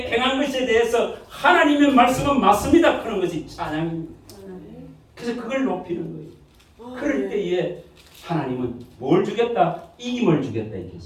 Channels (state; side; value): identical; both; correlation 1.00